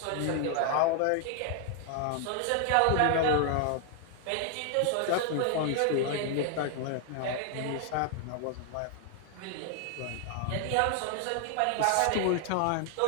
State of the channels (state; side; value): different; both; correlation 0.00